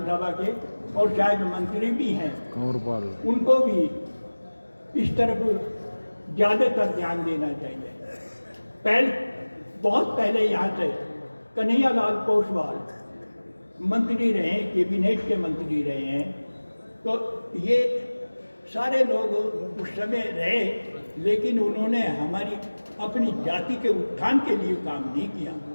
के और शायद मंत्री भी हैं, कंवरपाल उनको भी इस तरफ ज़्यादातर ध्यान देना चाहिए। बहुत पहले यहाँ से कन्हैयालाल पोसवाल मंत्री रहे हैं, कैबिनेट के मंत्री रहे हैं। तो ये सारे लोग उस समय रहे, लेकिन उन्होंने हमारी अपनी जाति के उत्थान के लिए काम नहीं किया।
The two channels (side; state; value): both; inverted; correlation -1.00